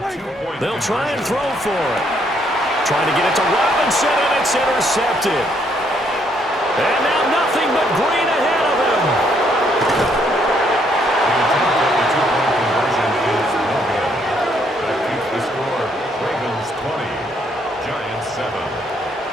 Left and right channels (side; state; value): both; normal; correlation 0.70